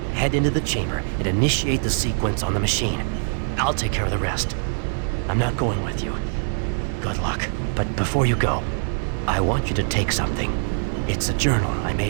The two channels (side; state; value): left; silent; digital silence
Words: Head into the chamber and initiate the sequence on the machine. I'll take care of the rest. I'm not going with you. Good luck. But before you go, I want you to take something. It's a journal I